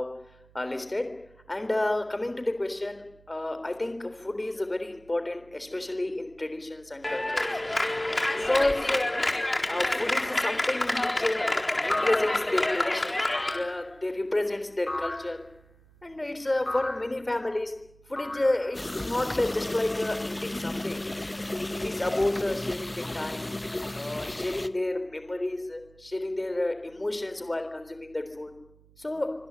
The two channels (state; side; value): noise; right; hum, 27 dB below the sound